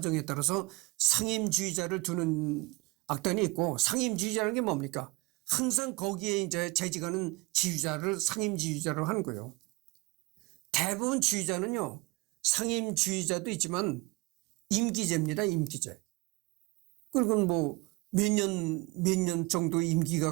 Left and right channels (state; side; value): quieter; left; 24.8 dB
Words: 따라서 상임 지휘자를 두는 악단이 있고 상임 지휘자라는 게 뭡니까? 항상 거기에 이제 재직하는 지휘자를 상임 지휘자로 하는 거예요. 대부분 지휘자는요. 상임 지휘자도 있지만 임기제입니다. 임기제. 그리고 몇 년 정도